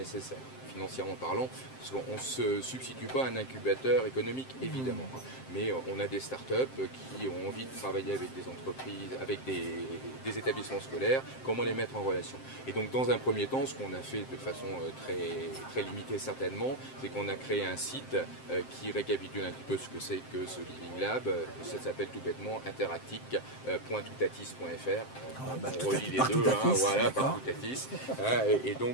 financièrement parlant, parce qu'on ne se substitue pas à un incubateur économique, évidemment, hein, mais on a des startups qui ont envie de travailler avec des entreprises, avec des établissements scolaires, comment les mettre en relation. Et donc dans un premier temps, ce qu'on a fait de façon très limitée certainement, c'est qu'on a créé un site qui récapitule un petit peu ce que c'est que ce Living Lab. Ça s'appelle tout bêtement interactic.toutatis.fr. On relie les deux, hein, voilà, par Toutatis. Et donc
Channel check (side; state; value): right; late; 7.6 ms